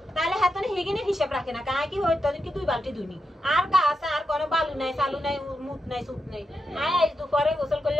তাহলে হাতনে হেগিনে হিসাব রাখে না কাই কি হইতো কি দুই বালতি দুনি আর গাছ আর কোনো বালু নাই চালু নাই মুত নাই সুত নাই আজ দুপুরে গোসল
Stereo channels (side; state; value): both; normal; correlation 0.87